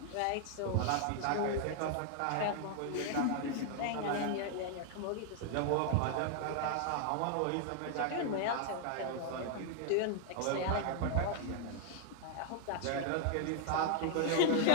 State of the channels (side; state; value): both; different; correlation 0.00